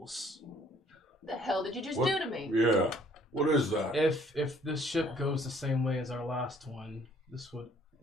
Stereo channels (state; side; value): normal; both; correlation 0.60